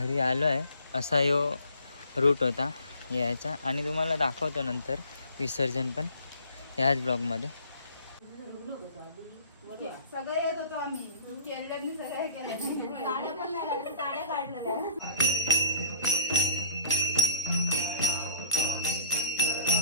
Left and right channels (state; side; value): inverted; both; correlation -0.51